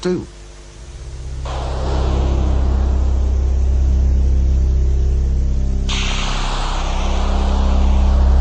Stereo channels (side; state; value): both; identical; correlation 1.00